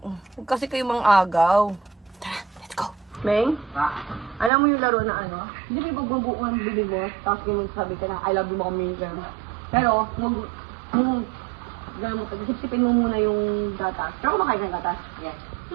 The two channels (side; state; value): left; drops out; at 4.5 s